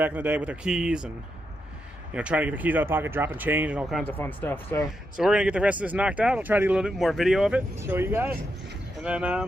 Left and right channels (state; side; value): normal; both; correlation 0.84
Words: in the day with their keys and, you know, trying to get their keys out of the pocket, dropping change, and all kinds of fun stuff. So we're gonna get the rest of this knocked out. I'll try to get a little bit more video of it, show you guys. And